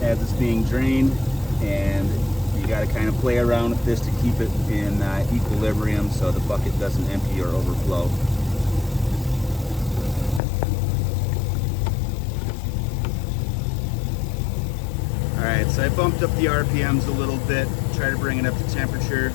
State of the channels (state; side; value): drops out; right; at 10.4 s